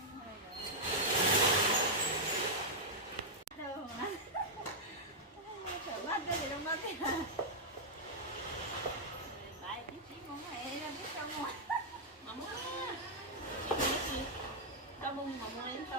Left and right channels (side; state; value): both; normal; correlation -0.05